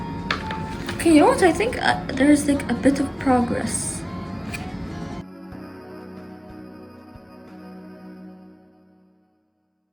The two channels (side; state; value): both; identical; correlation 1.00